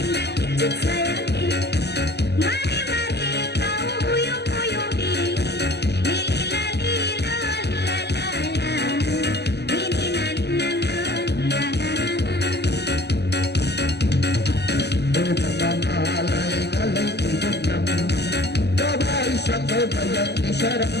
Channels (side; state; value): right; late; 0.49 ms